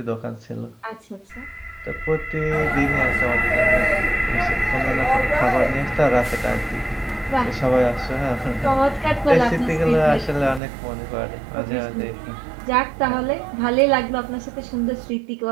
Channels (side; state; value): left; drops out; at 10.6 s